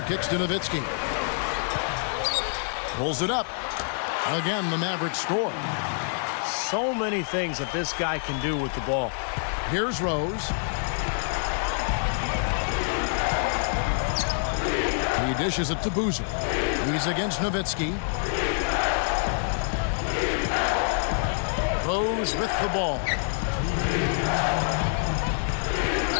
kicks to Nowitzki. Pulls it up. Again, the Mavericks score. So many things that this guy can do with the ball. Here's Rose. He dishes it to Boozer. He's against Nowitzki. Rose with the ball.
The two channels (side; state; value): right; silent; 61 dB below the other